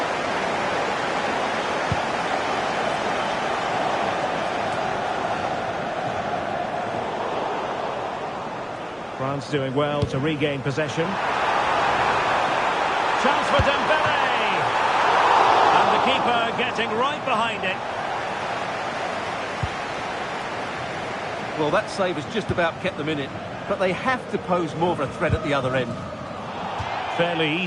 France doing well to regain possession. Chance for Dembele. And the keeper getting right behind it. Well, that save has just about kept them in it, but they have to pose more of a threat at the other end. Fairly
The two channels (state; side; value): identical; both; correlation 1.00